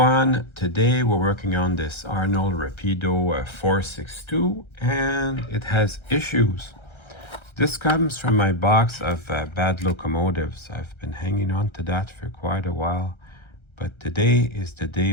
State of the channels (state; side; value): late; right; 1.3 ms